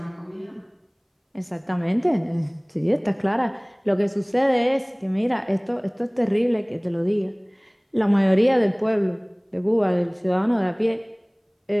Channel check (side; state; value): both; identical; correlation 1.00